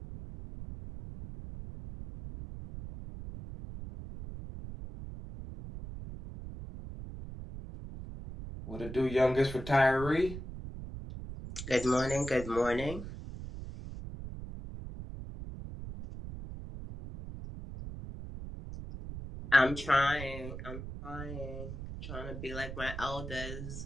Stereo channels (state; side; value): noise; right; rumble, 9 dB below the sound